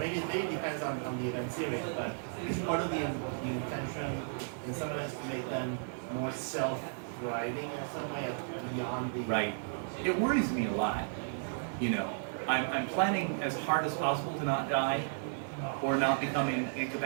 it depends on the event series, but it's part of the intention in some events to make them more self-driving in some way beyond the. Right. It worries me a lot. You know, I'm planning as hard as possible to not die or not becoming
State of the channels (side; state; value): left; silent; 55 dB below the other